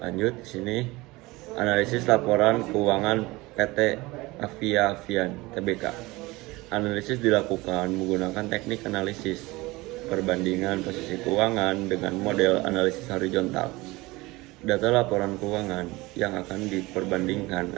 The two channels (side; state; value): left; quieter; 21.5 dB